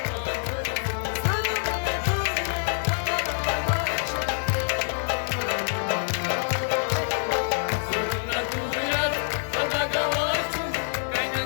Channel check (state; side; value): silent; right; 61 dB below the other